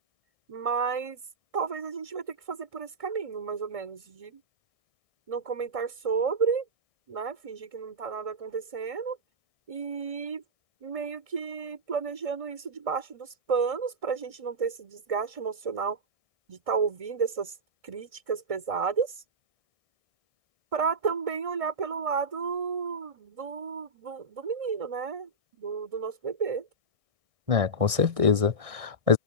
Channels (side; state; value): left; late; 1.6 ms